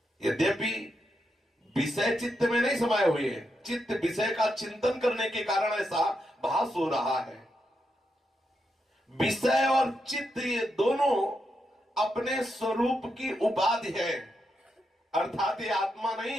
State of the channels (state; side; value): normal; both; correlation 0.83